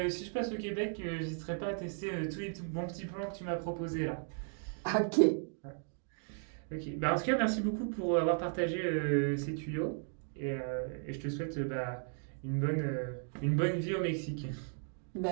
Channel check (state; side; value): silent; left; 54 dB below the other